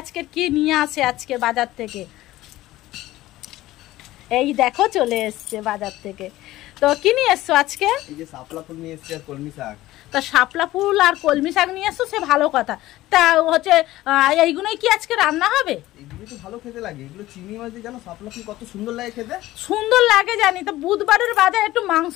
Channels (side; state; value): right; quieter; 16.4 dB